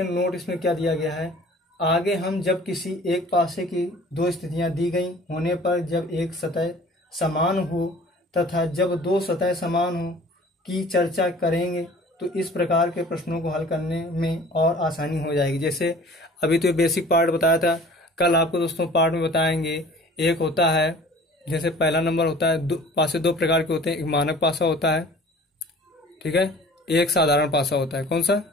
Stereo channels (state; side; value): normal; both; correlation 0.47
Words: नोट इसमें क्या दिया गया है? आगे हम जब किसी एक पासे की दो स्थितियां दी गई होने पर जब एक सतह समान हो तथा जब दो सतह समान हो की चर्चा करेंगे तो इस प्रकार के प्रश्नों को हल करने में और आसानी हो जाएगी। जैसे अभी तो बेसिक पार्ट बताया था, कल आपको दोस्तों पार्ट में बताएंगे। एक होता है, जैसे पहला नंबर होता है, पासे दो प्रकार के होते हैं। एक मानक पासा होता है, ठीक है, एक साधारण पासा होता है। कौन सा?